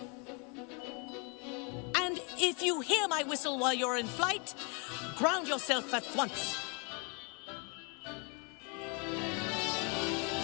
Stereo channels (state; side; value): quieter; right; 34.3 dB